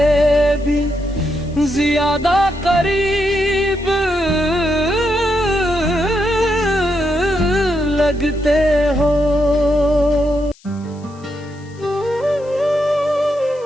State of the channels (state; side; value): noise; left; hiss, 28 dB below the sound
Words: भी ज्यादा करीब लगते हो।